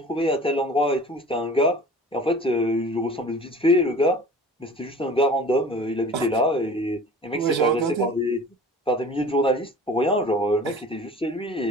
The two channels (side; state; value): both; normal; correlation 0.43